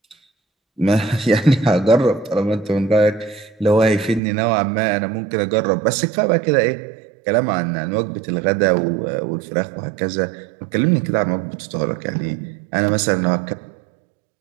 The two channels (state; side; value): drops out; left; at 4.2 s